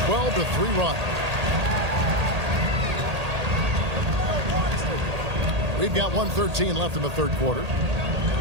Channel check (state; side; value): late; left; 1.8 ms